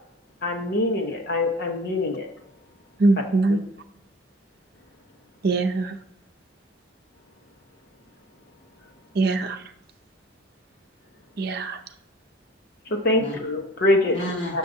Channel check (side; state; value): both; normal; correlation 0.47